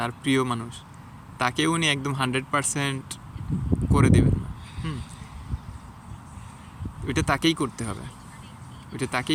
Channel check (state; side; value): identical; both; correlation 1.00